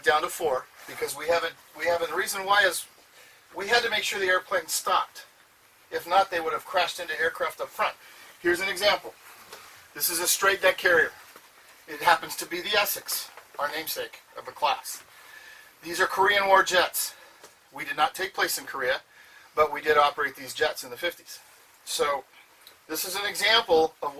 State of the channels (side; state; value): both; identical; correlation 1.00